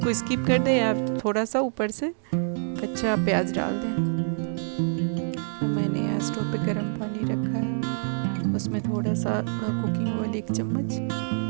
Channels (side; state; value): left; silent; 60 dB below the other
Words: स्किप कर दें या थोड़ा सा ऊपर से कच्चा प्याज डाल दें। अब मैंने यहाँ स्टोव पे गर्म पानी रखा है, उसमें थोड़ा सा कुकिंग ऑयल 1 चम्मच